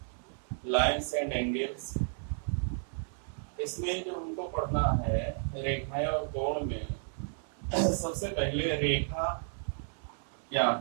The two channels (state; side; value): silent; left; 56 dB below the other